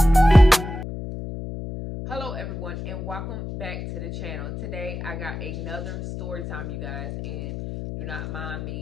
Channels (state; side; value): noise; left; hum, 7 dB below the sound